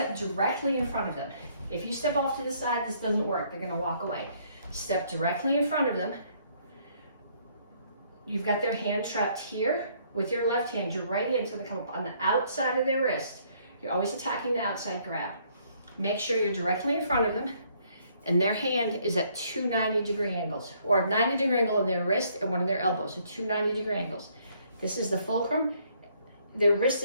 directly in front of them. If you step off to the side, this doesn't work. They're gonna walk away. Step directly in front of them. You've got their hand trapped here. With your left hand, your right hand's gonna come up on the outside of their wrist. You're always attacking the outside grab. Make sure you're directly in front of them, and their hand is at 2 90-degree angles, or 90-degree angle on their wrist and one of their elbows, so 2 90-degree angles. This is the fulcrum. Their wrist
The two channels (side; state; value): both; inverted; correlation -0.66